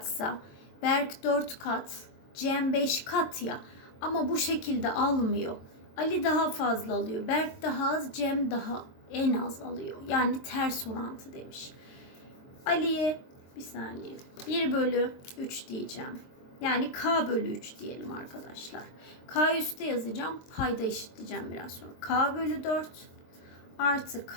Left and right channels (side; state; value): right; late; 22 ms